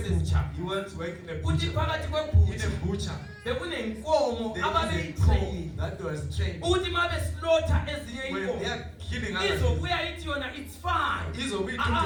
he wants to work in a Uthi butcher. phakathi In kweButcher a butcher. bekunenkomo There is a ababeyitrain. cow that was trained. Uthi mabe slaughter ezinye When inkomo they are killing others, izobuya ithi yona it's fine.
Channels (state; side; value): identical; both; correlation 1.00